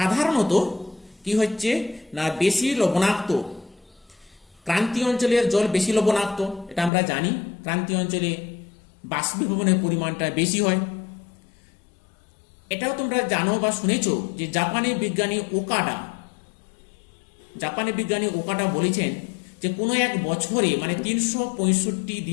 কি হচ্ছে না, বেশি লবণাক্ত ক্রান্তীয় অঞ্চলের জল বেশি লবণাক্ত, এটা আমরা জানি। ক্রান্তীয় অঞ্চলে বাষ্পীভবনের পরিমাণটা বেশি হয়। এটাও তোমরা জানো বা শুনেছো যে জাপানি বিজ্ঞানী ওকাডা বলেছেন যে কোনো এক বছরে মানে 365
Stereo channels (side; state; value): right; drops out; at 6.9 s